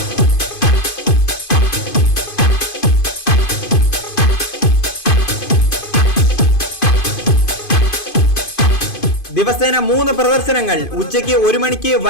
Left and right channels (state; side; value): late; right; 2.5 ms